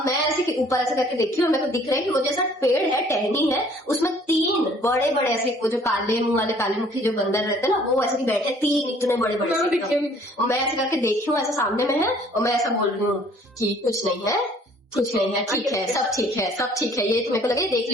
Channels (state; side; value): normal; both; correlation 0.57